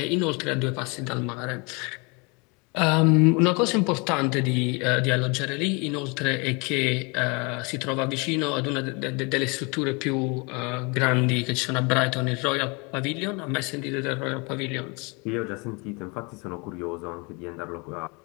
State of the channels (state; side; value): quieter; right; 30.0 dB